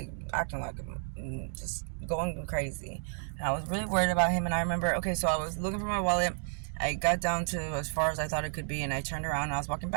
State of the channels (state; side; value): silent; left; digital silence